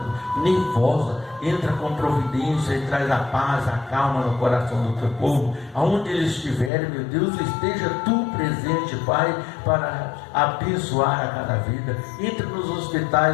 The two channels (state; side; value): drops out; right; at 6.7 s